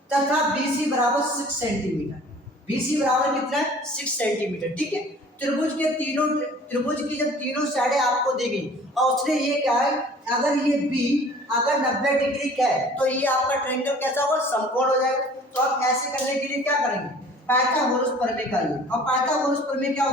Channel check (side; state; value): both; normal; correlation 0.49